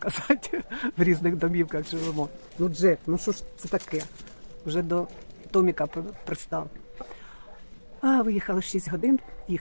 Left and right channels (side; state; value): both; inverted; correlation -1.00